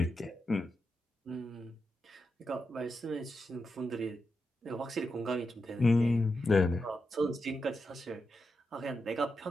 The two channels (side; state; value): both; normal; correlation 0.87